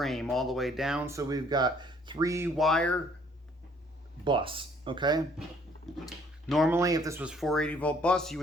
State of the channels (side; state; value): both; normal; correlation 0.61